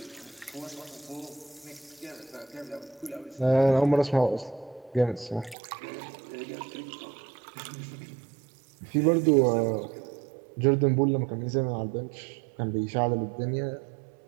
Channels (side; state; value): left; drops out; at 5.6 s